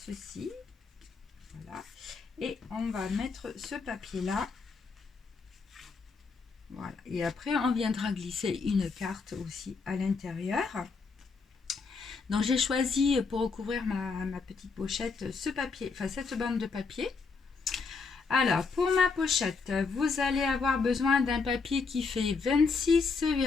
Voilà. Et on va mettre ce papier là. Voilà. Et après, on viendra glisser une carte aussi à l'intérieur. Donc, j'ai choisi pour recouvrir ma petite pochette ce papier, enfin cette bande de papier. Alors, pour ma pochette, vous allez avoir besoin d'un papier qui fait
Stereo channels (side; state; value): right; quieter; 4.7 dB